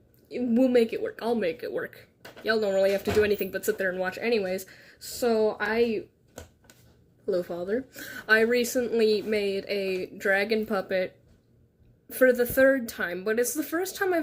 We'll make it work. I'll make it work. Y'all don't really have to do anything but sit there and watch anyways. So hello, Father. I recently made a dragon puppet for the 3rd time, but it's the first time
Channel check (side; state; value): both; identical; correlation 1.00